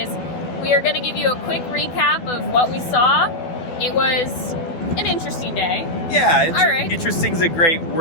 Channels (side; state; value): right; late; 12 ms